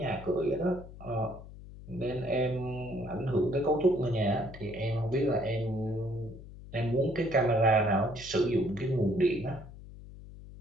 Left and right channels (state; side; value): noise; left; hum, 16 dB below the sound